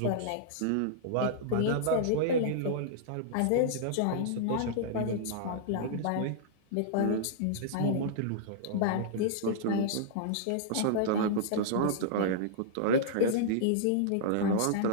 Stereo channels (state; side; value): different; both; correlation -0.02